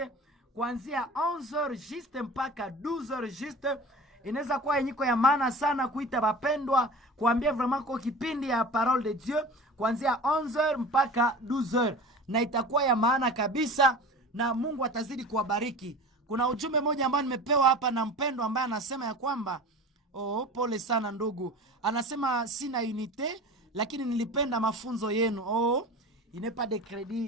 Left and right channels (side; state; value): both; normal; correlation 0.36